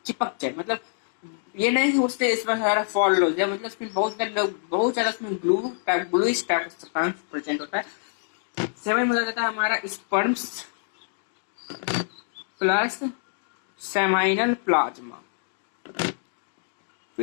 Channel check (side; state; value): right; silent; digital silence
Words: जाए, मतलब ये नहीं कि उससे इसमें सारा फॉल हो जाए, मतलब उसमें बहुत ज्यादा उसमें gluish type of substance present होता है। सेवन में जाता है हमारा स्पर्म्स प्लस सेमाइनल प्लाज्मा।